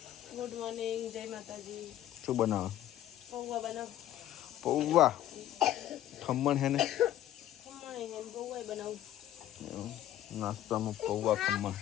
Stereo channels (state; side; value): quieter; right; 12.6 dB